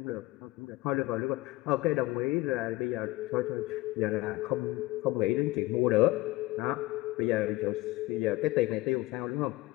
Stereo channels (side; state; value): right; quieter; 19.6 dB